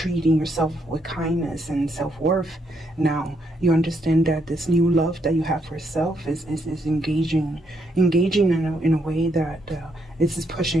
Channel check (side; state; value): both; normal; correlation 0.75